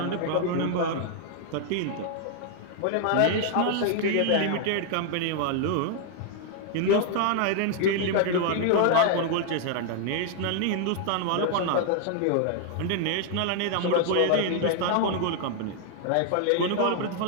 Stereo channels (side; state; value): both; different; correlation 0.00